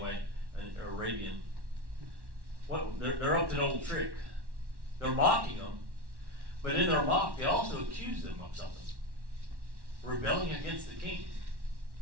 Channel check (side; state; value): left; late; 1.1 ms